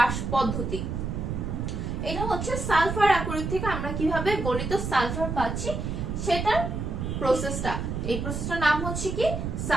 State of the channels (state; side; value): noise; right; rumble, 3 dB below the sound